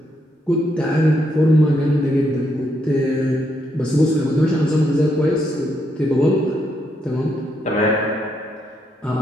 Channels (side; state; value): both; normal; correlation 0.77